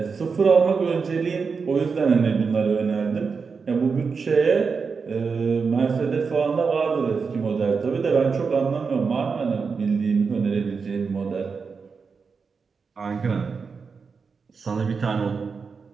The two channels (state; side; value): quieter; left; 5.2 dB